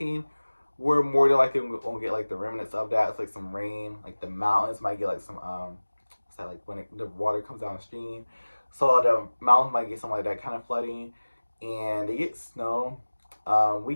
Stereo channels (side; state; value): both; inverted; correlation -1.00